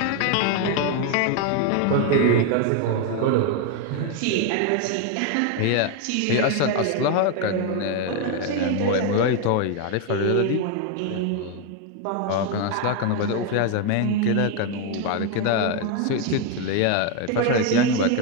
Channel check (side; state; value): both; different; correlation 0.01